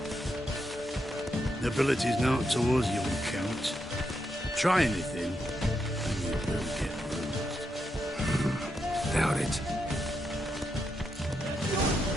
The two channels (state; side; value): normal; both; correlation 0.83